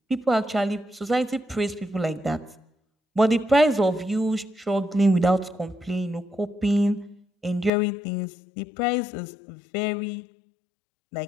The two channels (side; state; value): right; drops out; at 7.7 s